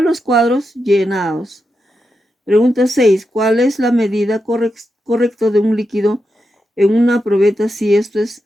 los cuadros llenados. Pregunta 6. ¿Cuál es la medida correcta de un líquido en una probeta si esto es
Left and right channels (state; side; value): normal; both; correlation 0.87